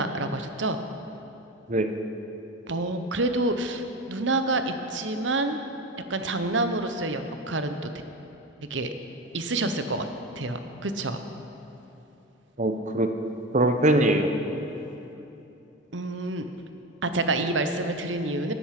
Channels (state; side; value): normal; both; correlation 0.25